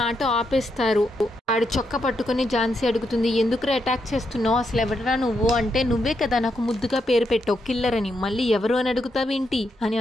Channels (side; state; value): both; normal; correlation 0.81